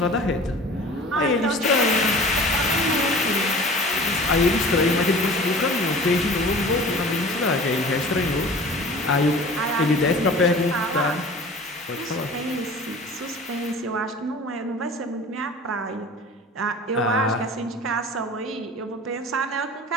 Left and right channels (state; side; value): normal; both; correlation 0.42